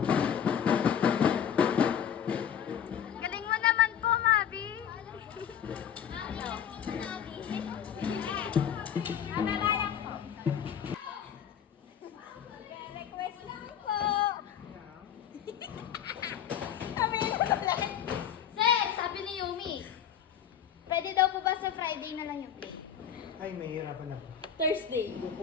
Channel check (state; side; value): quieter; right; 8.8 dB